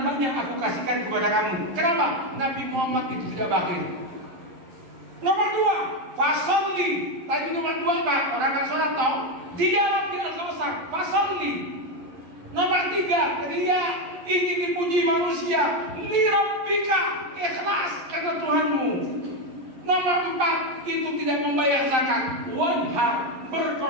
banyak aku kasihkan kepada kamu. Kenapa? Nabi Muhammad itu tidak bakhil. Nomor 2, fasolli. Tadi nomor 2 apa? Orang kan sholat tau? Dijawab di Al-Kautsar, fasolli. Nomor 3, dia ingin dipuji manusia. Lirabbika, ikhlas karena Tuhanmu. Nomor 4, itu tidak membayar zakat. Wanhar,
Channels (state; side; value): late; left; 11 ms